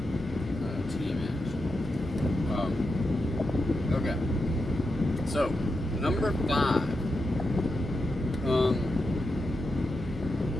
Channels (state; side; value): normal; both; correlation 0.87